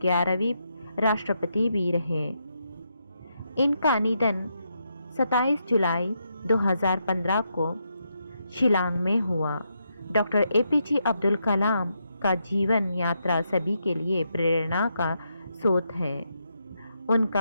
राष्ट्रपति भी रहे। इनका निधन 27 जुलाई 2015 को शिलांग में हुआ। डॉक्टर एपीजे अब्दुल कलाम का जीवन यात्रा सभी के लिए प्रेरणा का स्रोत है।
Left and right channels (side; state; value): both; inverted; correlation -0.81